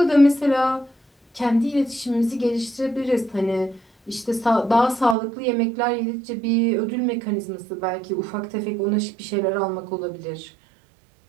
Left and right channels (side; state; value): left; drops out; at 5.2 s